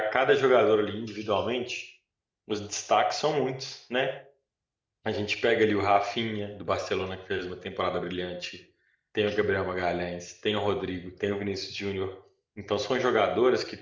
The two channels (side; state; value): both; identical; correlation 1.00